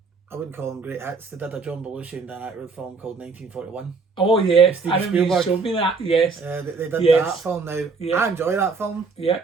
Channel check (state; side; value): quieter; left; 4.5 dB